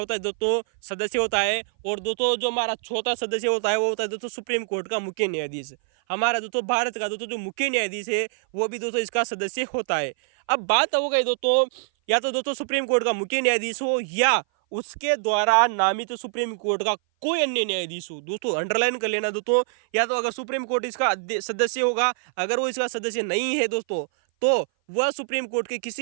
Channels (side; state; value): left; silent; 58 dB below the other